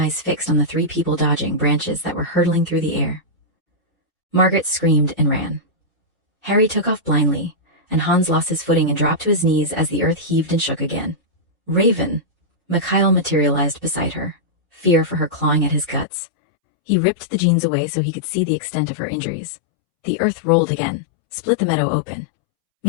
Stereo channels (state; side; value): drops out; right; at 16.1 s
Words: fixed on the 3 people dodging branches that were hurtling through the air. Margaret screamed and ran. Harry took off blindly, and Hans lost his footing and dropped to his knees as the earth heaved and shook again. "Raven!" Mikhail materialized beside her, fear for her clawing at his guts. He ripped the jeans away so he could see the extent of her injuries. The earth rolled again, split the meadow open.